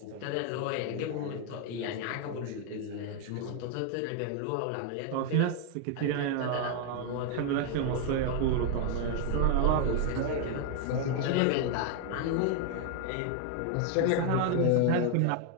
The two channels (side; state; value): both; different; correlation 0.00